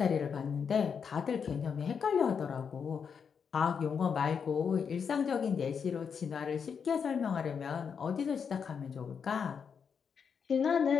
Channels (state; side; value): quieter; right; 6.6 dB